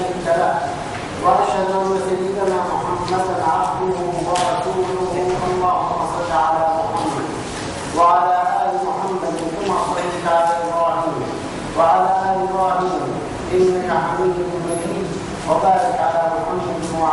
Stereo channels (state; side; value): identical; both; correlation 1.00